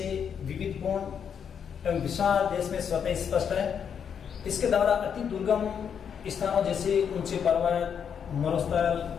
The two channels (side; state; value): right; quieter; 7.6 dB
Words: विविधपूर्ण एवं विशाल देश में स्वतः स्पष्ट है। इसके द्वारा अति दुर्गम स्थानों जैसे ऊंचे पर्वत, मरुस्थल,